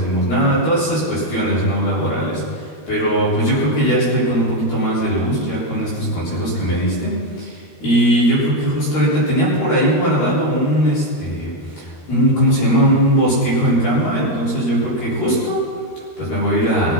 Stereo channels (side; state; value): right; late; 13 ms